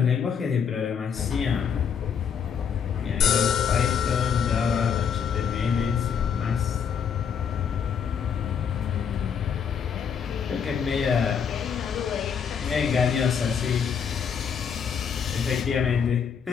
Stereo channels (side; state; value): right; quieter; 7.2 dB